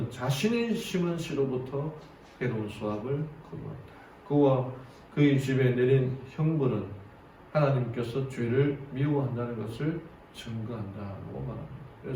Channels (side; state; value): both; identical; correlation 1.00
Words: 자신이 심은 씨로부터 해로운 수확을 거두었다. 그와 그의 집에 내린 형벌은 하나님께서 죄를 미워한다는 것을 증거한다고 말합니다.